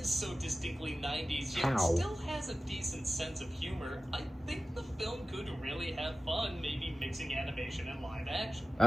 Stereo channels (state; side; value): normal; both; correlation 0.95